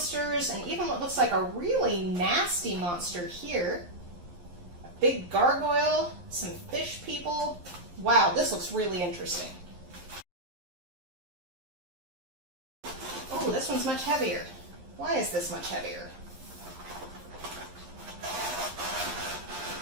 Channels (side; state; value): left; late; 11 ms